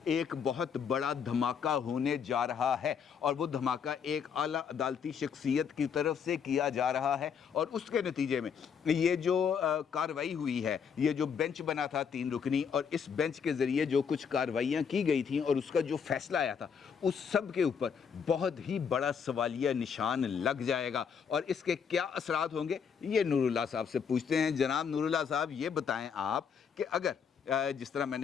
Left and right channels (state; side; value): quieter; right; 6.9 dB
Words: ایک بہت بڑا دھماکہ ہونے جا رہا ہے, اور وہ دھماکہ ایک اعلیٰ عدالتی شخصیت کی طرف سے کیا جا رہا ہے, اور اس کے نتیجے میں یہ جو کارروائی ہوئی ہے, یہ جو بینچ بنا تھا 3 رکنی, اور اس بینچ کے ذریعے جو کچھ کارروائیاں کی گئی تھیں اور اس کا جو فیصلہ آیا تھا اس سب کے اوپر بہت ہی بڑا سوالیہ نشان لگ جائے گا. اور اس کے کیا اثرات ہوں گے یہ نور اللہ صاحب سے پوچھتے ہیں. جناب نور اللہ صاحب, یہ بتائیں آپ کہ اگر جس طرح میں